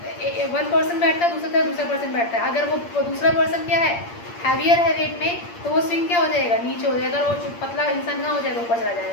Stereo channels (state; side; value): late; right; 8.6 ms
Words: 1 पर्सन बैठता है, दूसरी तरफ दूसरा पर्सन बैठता है। अगर वो दूसरा पर्सन क्या है, हैवियर है वेट में, तो वो स्विंग क्या हो जाएगा, नीचे हो जाएगा, और वो पतला इंसान ना हो जाएगा, ऊपर चला